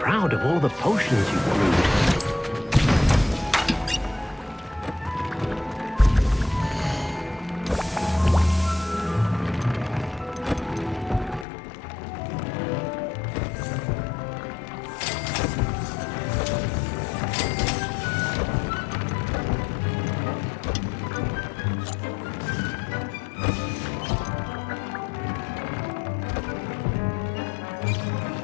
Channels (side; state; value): right; drops out; at 11.5 s